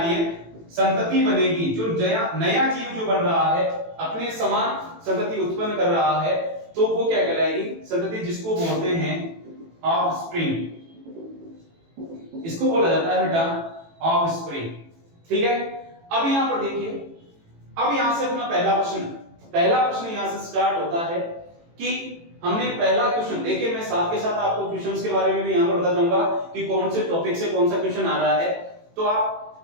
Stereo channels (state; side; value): late; left; 18 ms